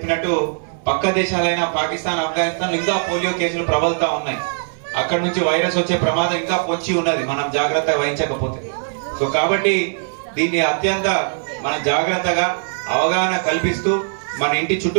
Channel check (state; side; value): silent; left; digital silence